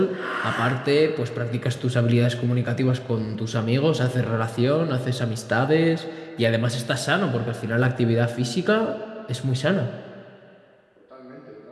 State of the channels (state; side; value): identical; both; correlation 1.00